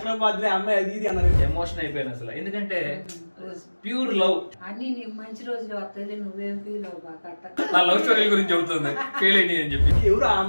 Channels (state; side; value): inverted; both; correlation -1.00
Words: బాధలే అమ్మాయి అది ఇది అన్నారు. ఎమోషన్ అయిపోయాను అసలు, ఎందుకంటే ప్యూర్ లవ్. అన్ని నీకు మంచి రోజులు వస్తాయి, నువ్వేం ఫీల్ అవ్వక. నా లవ్ స్టోరీ గురించి చెబుతుంది ఫెయిల్ అయ్యి అని చెప్పి. ఎవరు ఆ